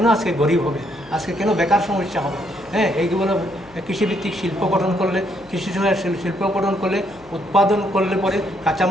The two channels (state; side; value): noise; left; hum, 25 dB below the sound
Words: আজকে গরিব হবে, আজকে কেন বেকার সমস্যা হবে? এইগুলো কৃষিভিত্তিক শিল্প গঠন করলে, কৃষি সহায়ক শিল্প গঠন করলে, উৎপাদন করলে পরে